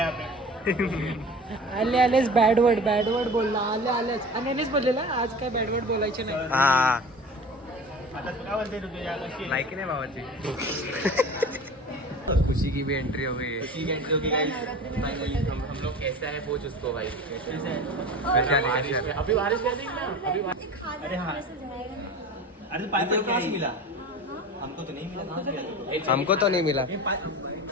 आपने. आले आलेच बॅड वर्ड बोलला. आले आलेच. आणि यानेच बोललेला आज काय बॅड वर्ड बोलायचे नाही. हा आता काय बोलते तू तुझ्या कशी? लायकी नाही भावाची. खुशी की भी एंट्री हो गई है. ठीक है जो कि गाइस फाइनली हम लोग कैसा है पूछ उसको भाई. कैसे है? कशी आली? अभी बारिश कर देंगे ना. अभी अरे हाँ. अरे तो पाइप कहाँ से मिला? हमको तो नहीं मिला. कहाँ से मिला? हमको तो नहीं मिला.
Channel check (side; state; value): both; normal; correlation 0.36